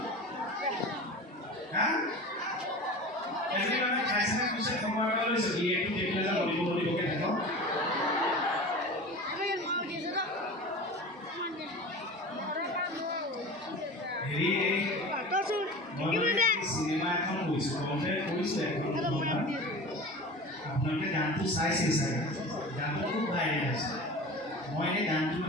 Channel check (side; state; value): both; normal; correlation 0.34